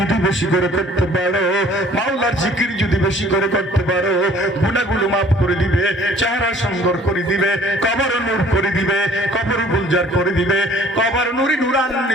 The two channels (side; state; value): both; normal; correlation 0.55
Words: বেশি করে করতে পারো, মাওলার জিকির যদি বেশি করে করতে পারো, গুনাহগুলো মাফ করে দিবে, চেহারা সুন্দর করে দিবে, কবর নূর করে দিবে, কবর গুলজার করে দিবে, কবর নুরি